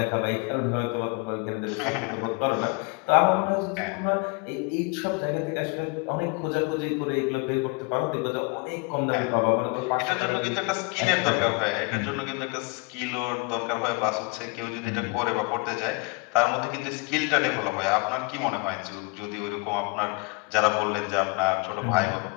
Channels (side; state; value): right; quieter; 30.1 dB